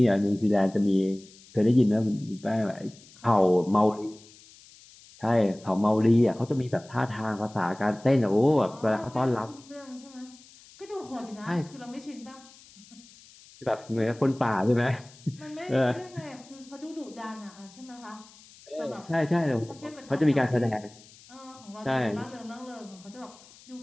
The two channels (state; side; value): noise; left; hiss, 23 dB below the sound